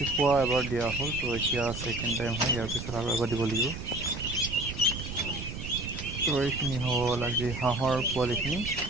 এবাৰ দিয়া হ'ল, তো এতিয়া ছেকেণ্ড টাইম হয়, ইয়াৰ পিছত আৰু এবাৰ দিব লাগিব। তো এইখিনি হ'ল আজি হাঁহৰ পোৱালিখিনি।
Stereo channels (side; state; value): right; noise; rumble, 8 dB below the sound